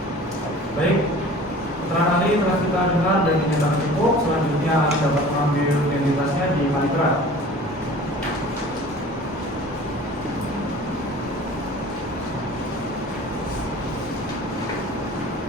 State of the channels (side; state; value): both; normal; correlation 0.44